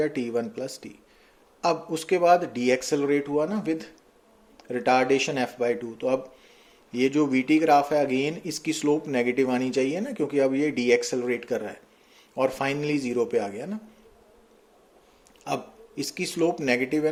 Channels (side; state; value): both; identical; correlation 1.00